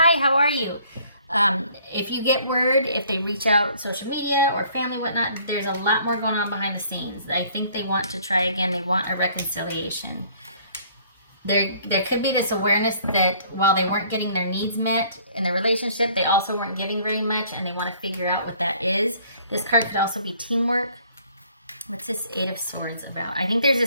how are you? If you get word, if they reach out social media or family, whatnot, there's a lot more going on behind the scenes. I think they want to try again. They want a reconciliation. There could be this awareness that while they weren't getting their needs met in the relationship, they also weren't giving very much, and they want to figure out what that is. This card could also be teamwork. What's this Eight of Swords about? I think there's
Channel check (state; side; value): inverted; both; correlation -0.58